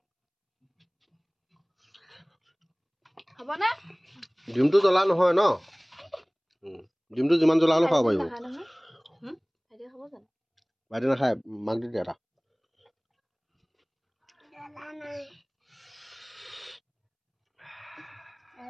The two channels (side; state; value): both; identical; correlation 1.00